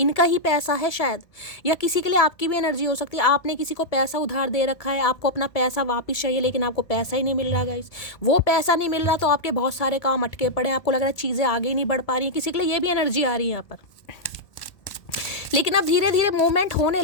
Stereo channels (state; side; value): late; right; 1.8 ms